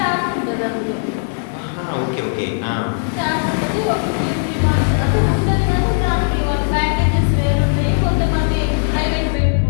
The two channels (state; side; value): silent; right; 65 dB below the other